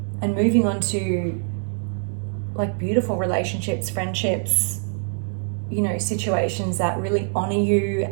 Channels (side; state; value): left; silent; 58 dB below the other